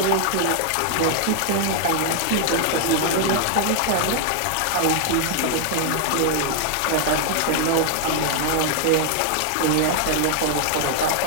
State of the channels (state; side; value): different; both; correlation 0.00